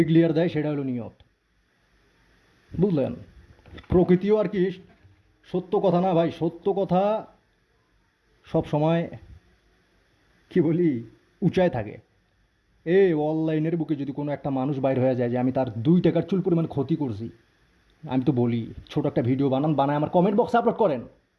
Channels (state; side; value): identical; both; correlation 1.00